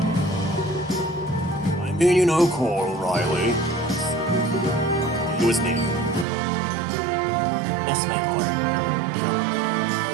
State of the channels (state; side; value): drops out; left; at 6.2 s